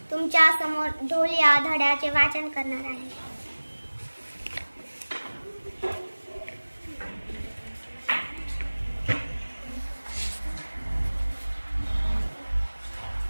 तुमच्या समोर ढोल या धड्याचे वाचन करणार आहे.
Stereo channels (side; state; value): both; inverted; correlation -1.00